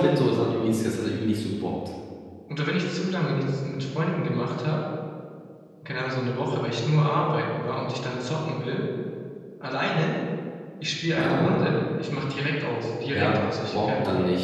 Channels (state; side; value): identical; both; correlation 1.00